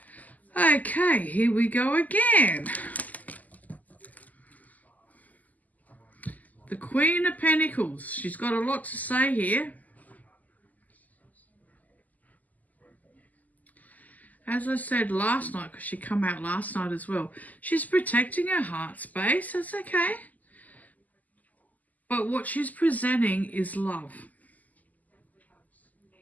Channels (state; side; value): late; right; 0.079 ms